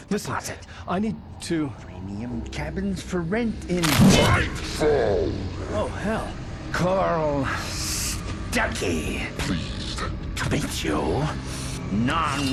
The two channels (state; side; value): identical; both; correlation 1.00